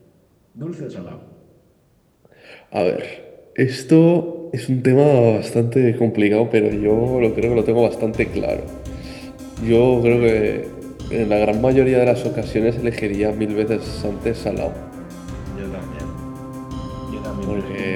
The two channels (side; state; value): both; identical; correlation 1.00